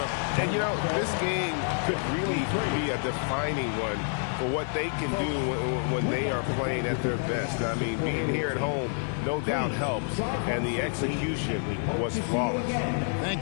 it. And, you know, this game could really be a defining one for what they can do when they are playing at their best. I mean, being here at home, no doubt helps, and the execution was flawless.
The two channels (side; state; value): right; silent; 59 dB below the other